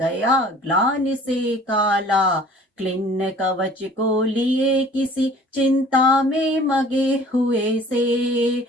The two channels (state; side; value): normal; both; correlation 0.50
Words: ग्लानि से काला। क्लिन्न कवच को लिए किसी चिंता में मगे हुए से।